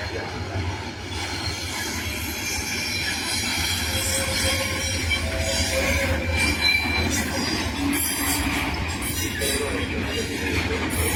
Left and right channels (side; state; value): both; identical; correlation 1.00